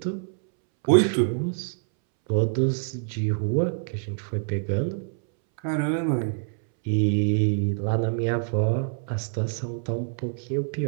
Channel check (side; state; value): left; silent; 61 dB below the other